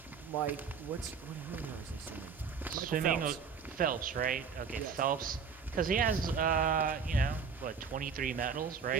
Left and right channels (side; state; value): left; quieter; 6.1 dB